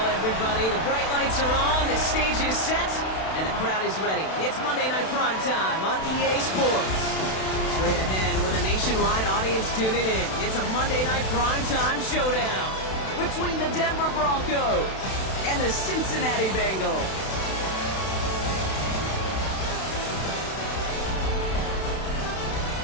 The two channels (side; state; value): right; late; 32 ms